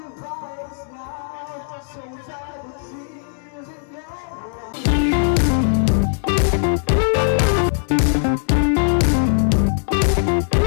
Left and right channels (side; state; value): right; silent; 63 dB below the other